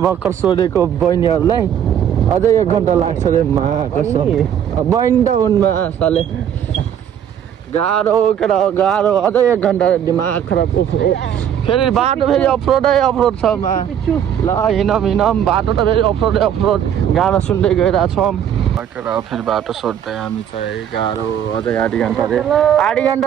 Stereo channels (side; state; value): left; quieter; 9.4 dB